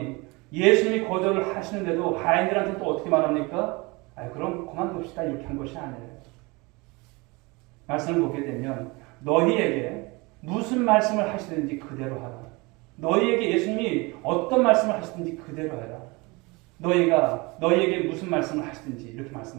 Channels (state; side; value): quieter; left; 25.6 dB